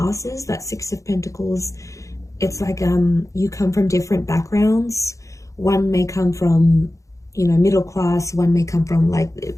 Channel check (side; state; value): right; late; 0.15 ms